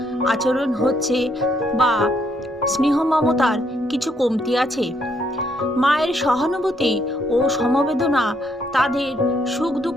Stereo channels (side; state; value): both; normal; correlation 0.72